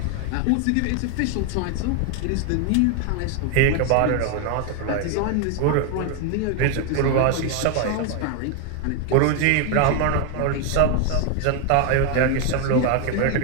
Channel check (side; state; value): both; different; correlation 0.01